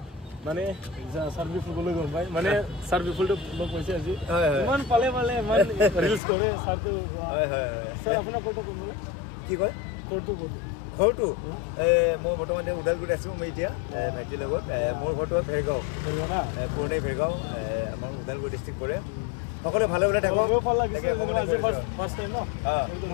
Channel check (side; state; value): right; drops out; at 6.2 s